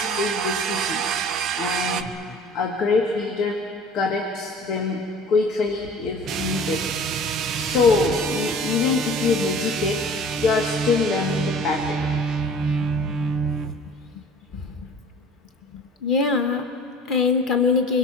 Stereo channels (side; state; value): both; normal; correlation 0.45